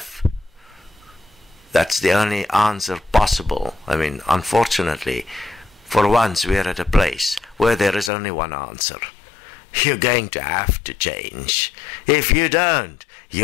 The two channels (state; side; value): drops out; right; at 8.1 s